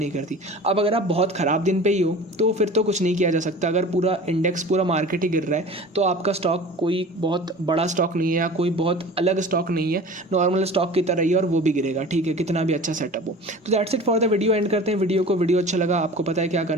करती। अब अगर आप बहुत ख़राब दिन पे ही हो तो फिर तो कुछ नहीं किया जा सकता। अगर पूरा इंडेक्स पूरा मार्केट ही गिर रहा है तो आपका स्टॉक कोई बहुत बड़ा स्टॉक नहीं है या कोई बहुत अलग स्टॉक नहीं है, नॉर्मल स्टॉक की तरह ही और वो भी गिरेगा, ठीक है, कितना भी अच्छा सेटअप हो। तो that's it for the video. And करते हैं वीडियो को। वीडियो अच्छा लगा, आपको पता है क्या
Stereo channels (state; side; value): normal; both; correlation 0.39